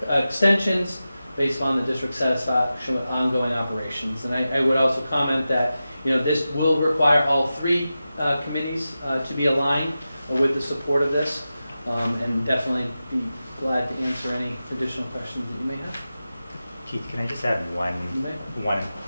extensions based on the district's satisfaction with ongoing operations. And I would also comment that this will require all 3 committees to be aligned with the support of this, and definitely be glad to answer any additional questions that you may have. Keith, can I just add one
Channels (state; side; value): inverted; both; correlation -0.93